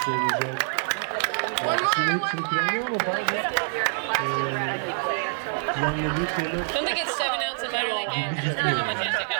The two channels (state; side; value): silent; left; 61 dB below the other